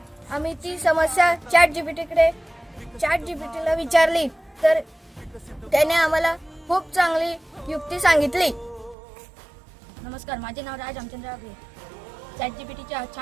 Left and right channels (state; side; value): drops out; left; at 9.0 s